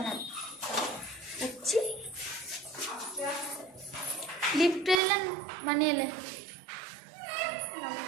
লিফট এলেন মানে এলে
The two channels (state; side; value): drops out; left; at 5.0 s